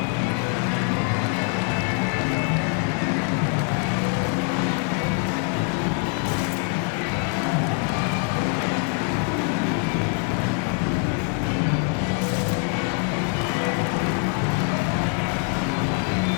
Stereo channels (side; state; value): right; quieter; 37.2 dB